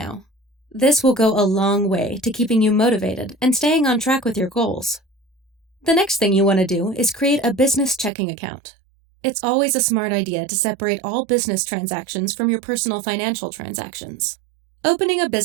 This will go a long way to keeping you motivated and staying on track with your goals. The next thing you want to do is create a business checking account. It's always a smart idea to separate all business transactions from your personal financial transactions. Opening a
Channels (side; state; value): left; drops out; at 8.1 s